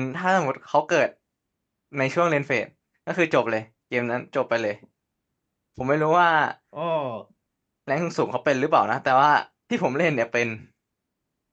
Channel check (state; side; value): identical; both; correlation 1.00